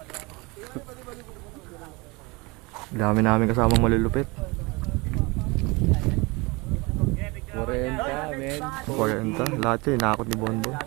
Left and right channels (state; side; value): quieter; left; 25.8 dB